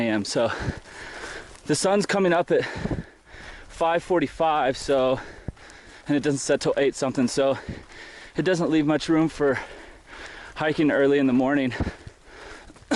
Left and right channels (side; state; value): both; identical; correlation 1.00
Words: so the sun's coming up at 5:45, so, and it doesn't set till 8 something, so it doesn't leave much room for hiking early in the morning